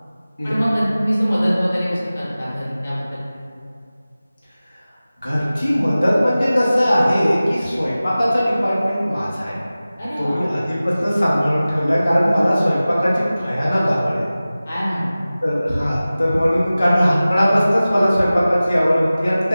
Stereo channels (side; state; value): both; inverted; correlation -0.97